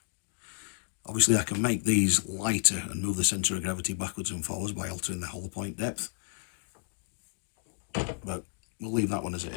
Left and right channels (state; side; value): silent; right; 56 dB below the other